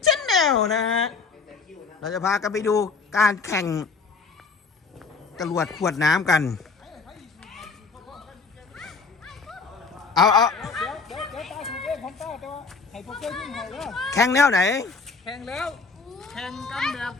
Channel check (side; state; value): right; quieter; 4.7 dB